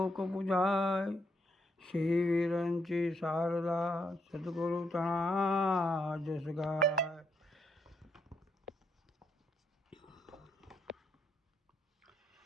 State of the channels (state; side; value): normal; both; correlation 0.77